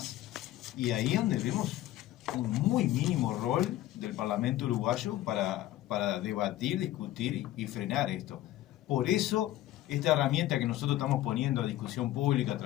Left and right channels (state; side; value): quieter; right; 14.5 dB